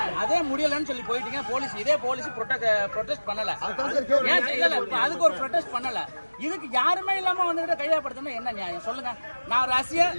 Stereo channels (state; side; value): inverted; both; correlation -1.00